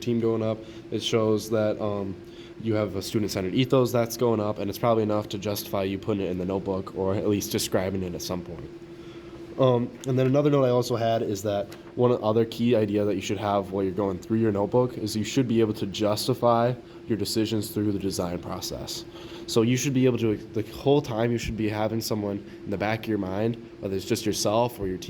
going up. It shows that you have a student-centered ethos that's going up, and it's probably enough to justify you putting it in the notebook or at least describing it at some point. And then another note I also had is that one other key idea that you should have while you're going through your notebook is you should be able to justify your decisions through the design process. So you should be able to, the whole time you should be having someone in the back of your mind, whether it's just yourself or your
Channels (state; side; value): identical; both; correlation 1.00